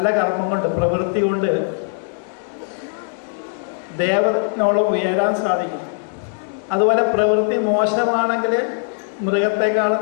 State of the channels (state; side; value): silent; right; digital silence